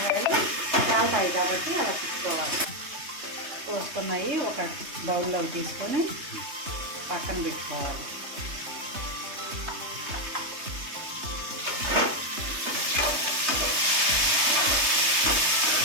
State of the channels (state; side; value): late; left; 3.2 ms